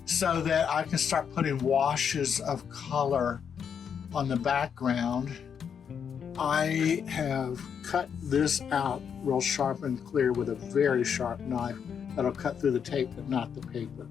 so that I can start putting washes of color on the background. I have cut this out real sharp and clear with a very sharp knife that'll cut through the tape but not the paper,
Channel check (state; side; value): quieter; right; 7.4 dB